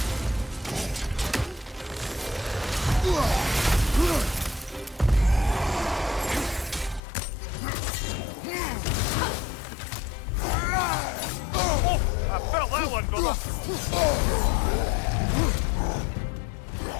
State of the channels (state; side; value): drops out; right; at 7.0 s